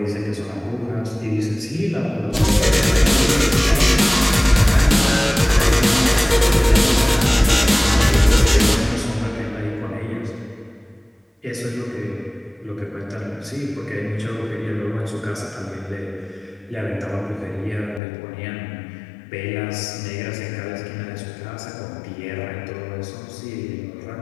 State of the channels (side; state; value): right; drops out; at 18.0 s